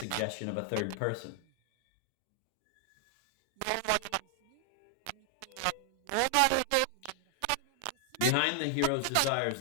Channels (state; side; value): different; both; correlation 0.00